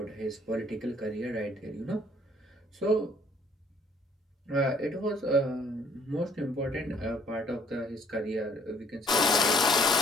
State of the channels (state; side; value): normal; both; correlation 0.61